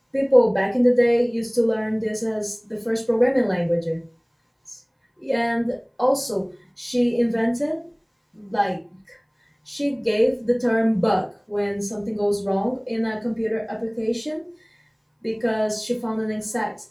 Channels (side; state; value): both; identical; correlation 1.00